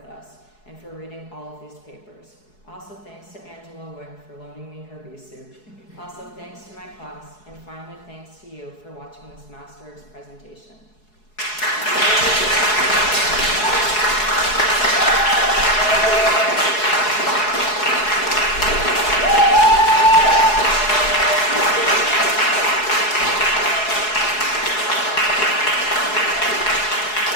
us and for reading all of these papers. Also, thanks to Angela Wick for loaning me her bee suit. Also, thanks to my class, and finally, thanks to you for watching this Masterworks presentation.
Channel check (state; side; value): late; right; 4.7 ms